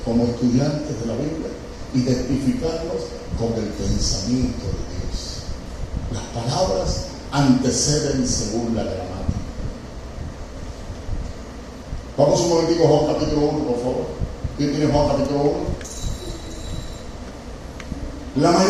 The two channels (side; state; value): both; identical; correlation 1.00